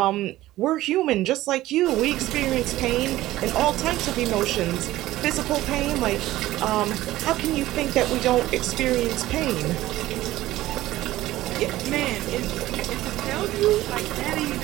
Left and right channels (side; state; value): left; quieter; 15.9 dB